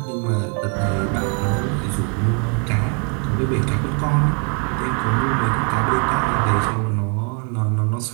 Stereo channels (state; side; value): quieter; left; 35.9 dB